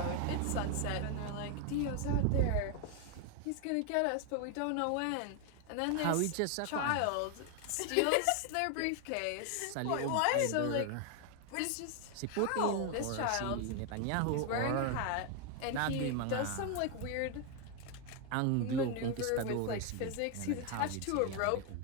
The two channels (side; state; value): both; different; correlation 0.01